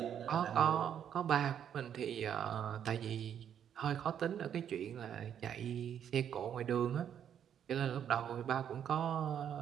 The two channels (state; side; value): quieter; left; 9.1 dB